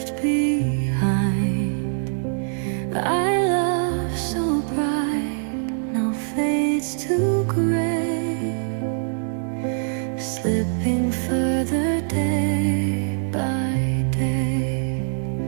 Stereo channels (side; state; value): left; silent; digital silence